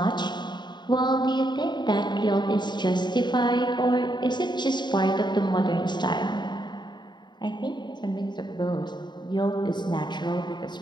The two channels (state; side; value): late; right; 0.21 ms